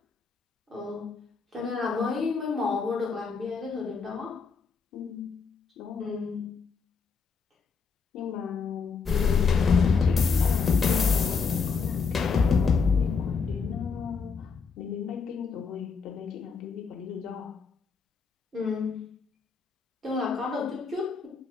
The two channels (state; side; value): quieter; right; 5.2 dB